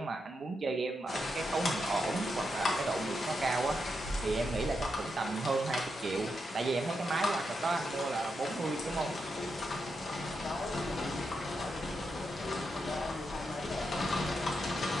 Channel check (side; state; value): both; normal; correlation 0.84